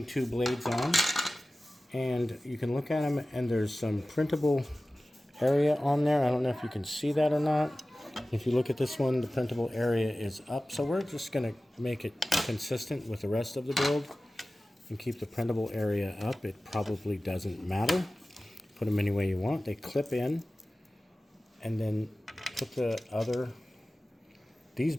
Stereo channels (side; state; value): both; normal; correlation 0.96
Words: 2 blades on, and you can look at them and there's some printable area on there. I don't know if you can see that or not. If you look at this one, the printable area is up, so we're just going to make it consistent with the rest of the build and keep the printable area up. It probably doesn't matter. Put them any way you want. They clip in, and then put the other. These